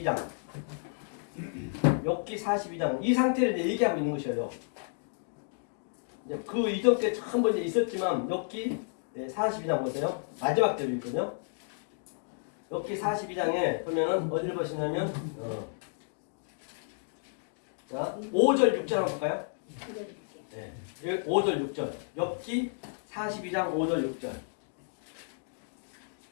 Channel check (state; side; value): silent; right; digital silence